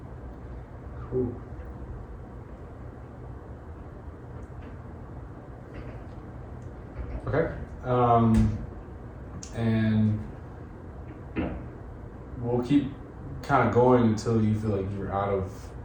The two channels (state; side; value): identical; both; correlation 1.00